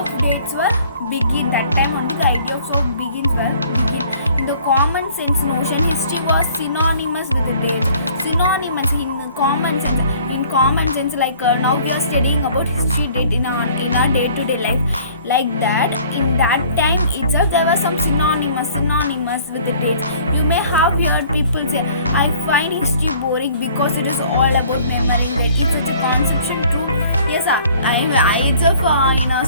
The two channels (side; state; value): both; inverted; correlation -0.54